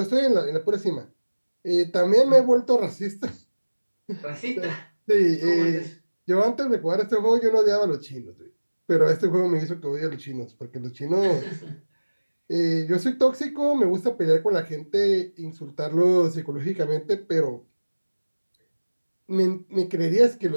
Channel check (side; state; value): both; inverted; correlation -1.00